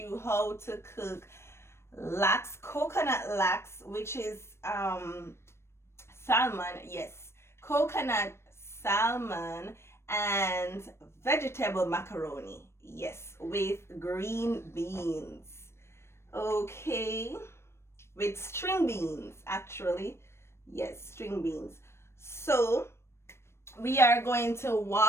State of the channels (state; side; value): late; right; 0.12 ms